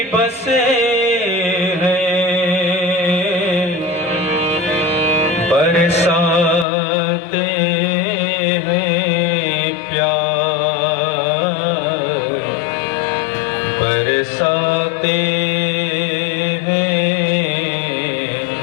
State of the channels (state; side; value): drops out; right; at 6.7 s